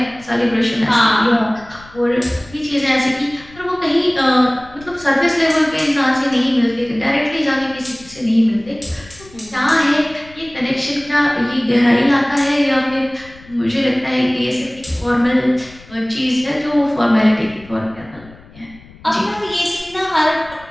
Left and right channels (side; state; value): left; noise; rumble, 22 dB below the sound